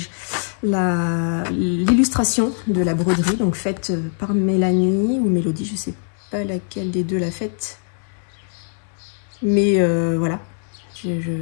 l'illustration de la broderie, donc faite par Mélanie ou Mélodie, je ne sais pas laquelle des deux l'a faite. Mais voilà,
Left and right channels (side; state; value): right; silent; digital silence